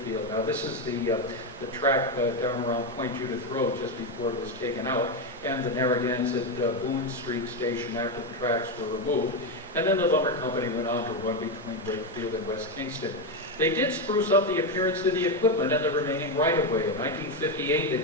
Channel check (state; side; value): normal; both; correlation 0.09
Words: Now this is the track down around Point Judith Road just before it was taken out, and the Narragansett Boone Street station after the tracks were removed. And then the lumber company went on to run between Wakefield and West Kingston. They did spruce up the appearance of the equipment and the remaining right-of-way. In 1958, they